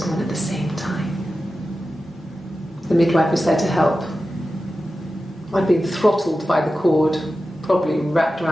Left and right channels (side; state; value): both; normal; correlation 0.93